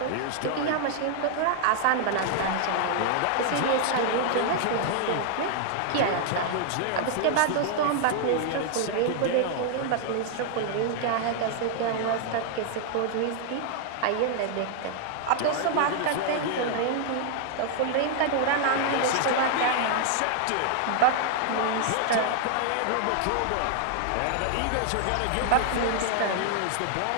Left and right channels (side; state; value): both; different; correlation 0.00